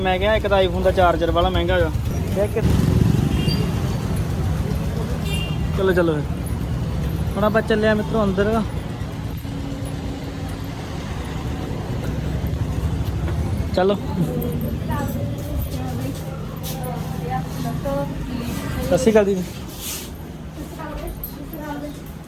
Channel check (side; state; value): both; identical; correlation 1.00